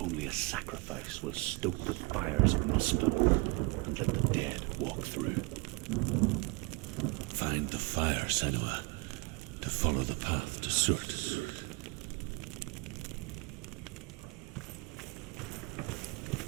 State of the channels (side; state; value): left; quieter; 26.6 dB